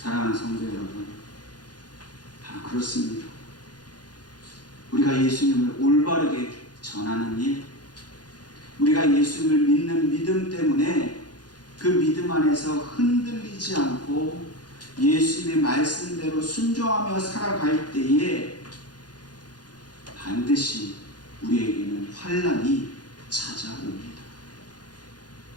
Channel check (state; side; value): late; right; 0.69 ms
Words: 성도 여러분, 다 그렇습니다. 우리가 예수님을 올바르게 전하는 일, 우리가 예수님을 믿는 믿음 때문에 그 믿음 안에서 흔들리지 않고 예수님의 말씀대로 순종하며 살아갈 때에 반드시 우리에게는 환난이 찾아옵니다.